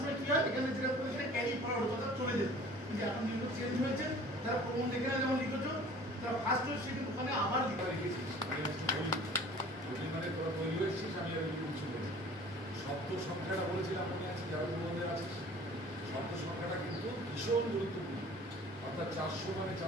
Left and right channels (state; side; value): normal; both; correlation 0.47